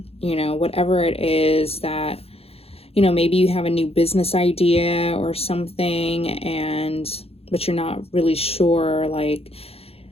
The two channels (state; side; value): late; right; 0.29 ms